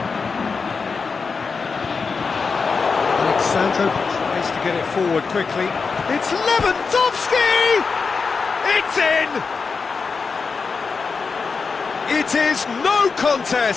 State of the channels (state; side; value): quieter; right; 4.9 dB